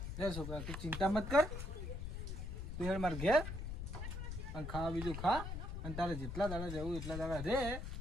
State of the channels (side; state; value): left; noise; rumble, 5 dB below the sound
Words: રે છોકરા તું ચિંતા મત કર તું હેડ માર ઘેર અને ખાવા બીજું ખા અને તારે જેટલા દાડા જવું એટલા દાડા રે